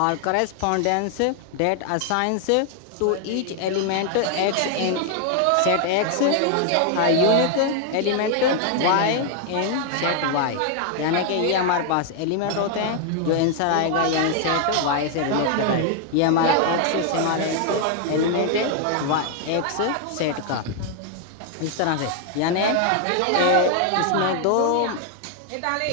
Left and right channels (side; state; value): both; different; correlation 0.00